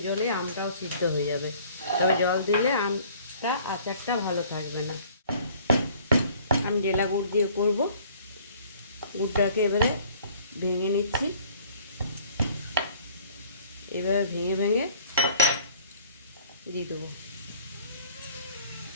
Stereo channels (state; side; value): inverted; both; correlation -0.53